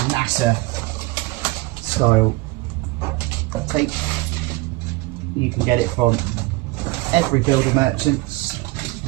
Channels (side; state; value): left; quieter; 21.5 dB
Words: NASA style tape. You can get it from every builder merchants